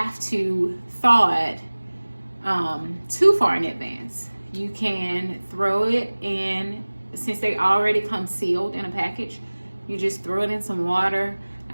to thaw it too far in advance. You can throw it in, since they already come sealed in a package, you just throw it in some water.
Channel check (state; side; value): inverted; both; correlation -1.00